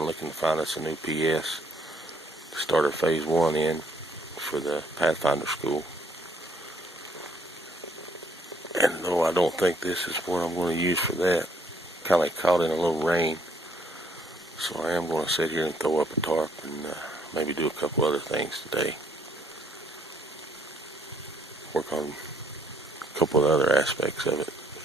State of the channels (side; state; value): both; normal; correlation 0.66